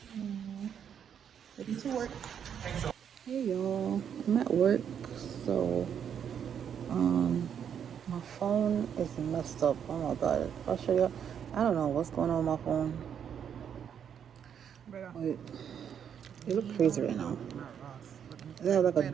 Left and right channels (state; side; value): quieter; left; 8.3 dB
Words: Ready to work. Hey y'all, I'm at work, so my phone is messed up. Oh my god, I'll show you. I don't know what's going on with my phone. Wait, it looks crazy right now. It has like